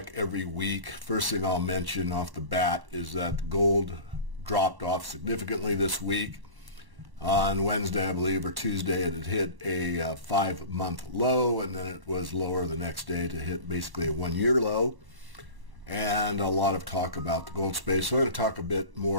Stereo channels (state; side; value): late; left; 1.1 ms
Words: every week. First thing I'll mention off the bat is that gold dropped off significantly this week. On Wednesday, I believe, or Tuesday, it had hit a 5-month low, and then it was lower the next day to hit basically a 1-year low. And a lot of talk about the gold space. So I'm going to talk a bit